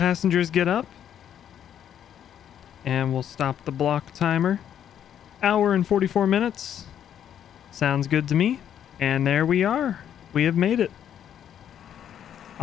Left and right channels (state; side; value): quieter; right; 9.7 dB